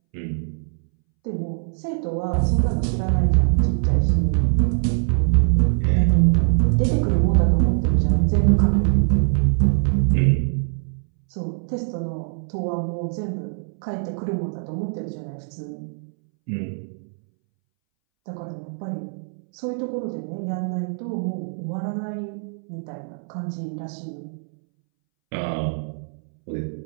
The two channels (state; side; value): silent; left; 64 dB below the other